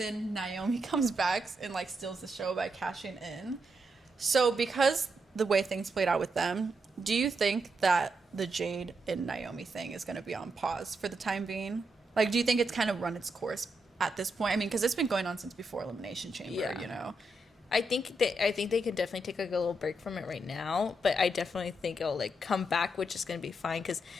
Naomi comes back and like steals the show by cashing in. So because the way things played out with them, do you think that the Jade and Naomi thing is going to be on pause for the time being? Like, do you think it's kind of run its course at this point? I mean, because it's been going on since before Elimination Chamber, you know? I think they could definitely take like a little break from it right now, but I definitely think it'll like come back, which is going to be fine because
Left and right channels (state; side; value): normal; both; correlation 0.82